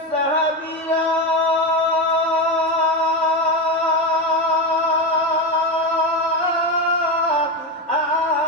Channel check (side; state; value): both; normal; correlation 0.15